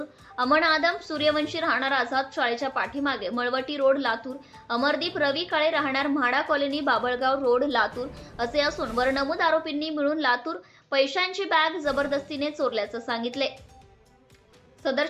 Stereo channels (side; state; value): both; identical; correlation 1.00